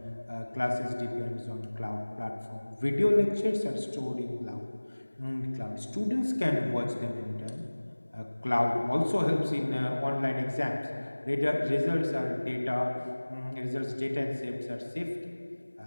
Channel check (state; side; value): inverted; both; correlation -1.00